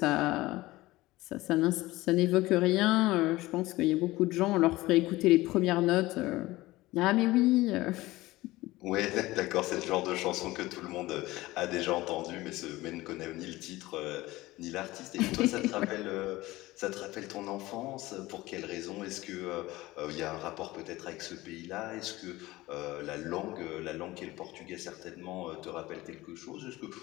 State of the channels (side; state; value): right; quieter; 18.8 dB